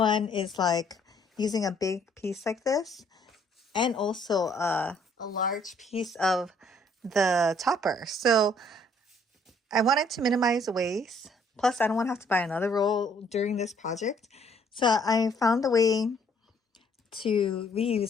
is like using a big piece like this, and also a large piece of the topper. So I wanted to minimize waste. Plus, I don't want to have to buy another roll during this project. So I found a way to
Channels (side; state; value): both; normal; correlation 0.63